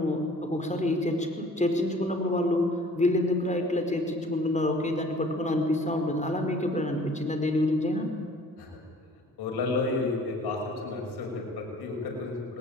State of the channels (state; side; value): normal; both; correlation 0.51